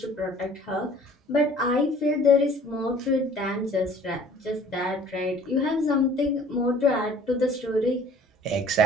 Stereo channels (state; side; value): normal; both; correlation 0.51